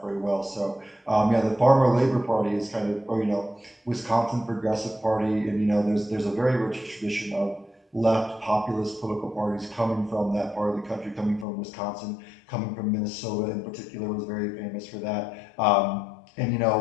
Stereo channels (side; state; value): right; drops out; at 11.5 s